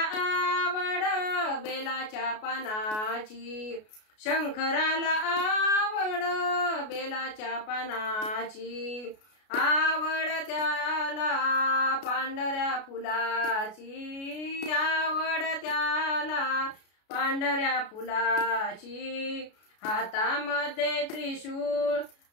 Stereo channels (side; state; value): right; late; 33 ms